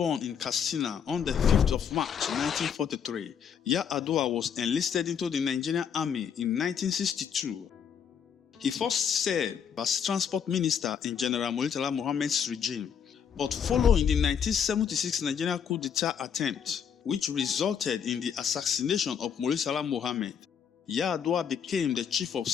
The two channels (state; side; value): quieter; right; 7.6 dB